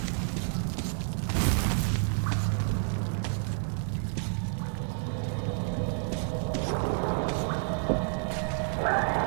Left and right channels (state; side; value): silent; left; 58 dB below the other